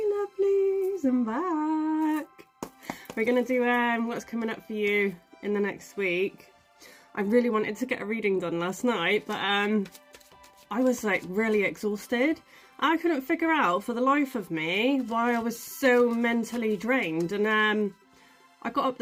I'm back. We're gonna do what's coming up for you in the next week. I really wanted to get a reading done last night, but I was like really exhausted. I couldn't figure out for the life of me why I was so mentally drained, and I got up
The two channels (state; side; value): identical; both; correlation 1.00